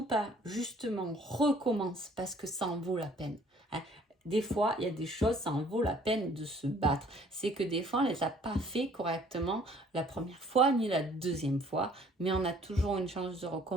pas, justement recommence parce que ça en vaut la peine. Hein. Des fois, il y a des choses, ça en vaut la peine de se battre. C'est que des fois, on ne les a pas fait correctement la première fois ni la deuxième fois, mais on a toujours une chance de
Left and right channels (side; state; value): both; normal; correlation 0.57